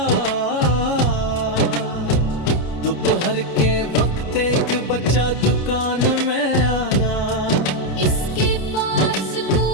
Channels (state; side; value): late; right; 29 ms